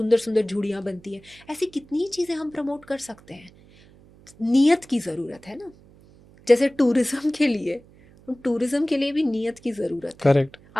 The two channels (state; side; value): noise; right; hum, 25 dB below the sound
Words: सुंदर झूड़ियाँ बनती हैं। ऐसी कितनी चीज़ें हम प्रमोट कर सकते हैं। नियत की ज़रूरत है ना, जैसे टूरिज्म के लिए भी नियत की ज़रूरत है। करेक्ट।